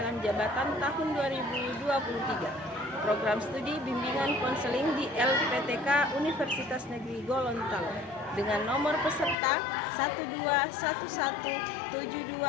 jabatan tahun 2023. Program studi bimbingan konseling di LPTK Universitas Negeri Gorontalo dengan nomor peserta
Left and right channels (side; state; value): right; drops out; at 9.3 s